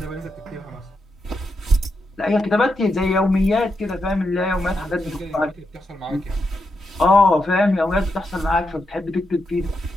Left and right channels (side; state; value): both; normal; correlation 0.84